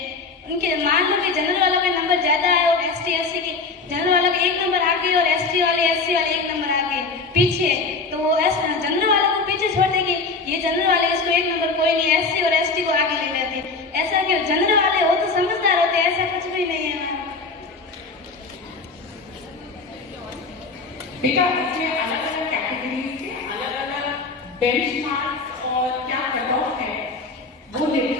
उनके मान लो कि जनरल वालों के नंबर ज्यादा है और एसटी एससी के जनरल वालों के एक नंबर आगे और एसटी वाले एससी वाले एक नंबर आगे पीछे, तो वो जनरल वालों को पीछे छोड़ देगी। ये जनरल वाले इसको एक नंबर कोई नहीं, एससी और एसटी को आगे ले लेते। ऐसा क्यों? जनरल वाले हो तो समझदार होते, ऐसा कुछ भी नहीं है। बेटा इसमें अलग अलग कैटेगरीज के अलग अलग बेंचमार्क्स और क्या कट ऑफ है वो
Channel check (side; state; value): right; quieter; 4.1 dB